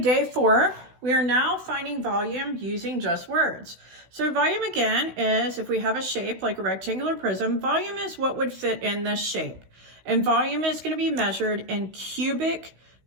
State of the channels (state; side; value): late; left; 16 ms